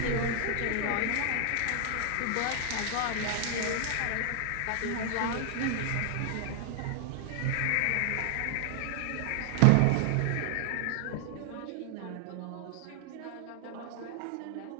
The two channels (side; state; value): both; different; correlation 0.00